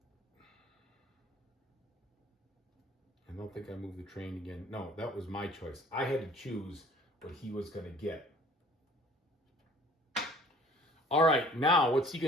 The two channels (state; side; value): normal; both; correlation 0.51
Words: I don't think I moved the train again. No, that was my choice. I had to choose what he was going to get. All right, now what's he